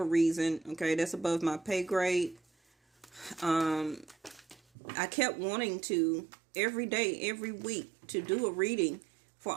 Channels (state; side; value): drops out; left; at 4.6 s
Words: reason, okay, that's above my pay grade. I kept wanting to every day, every week to do a reading for